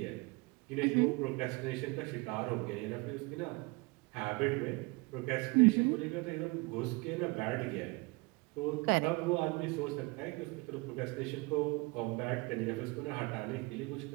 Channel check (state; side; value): quieter; left; 26.7 dB